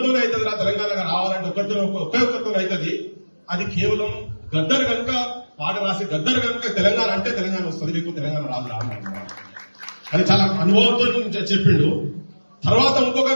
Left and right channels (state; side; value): inverted; both; correlation -1.00